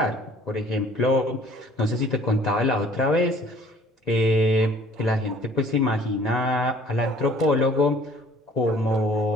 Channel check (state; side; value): normal; both; correlation 0.54